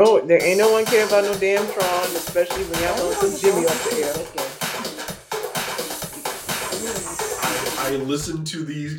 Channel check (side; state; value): both; identical; correlation 1.00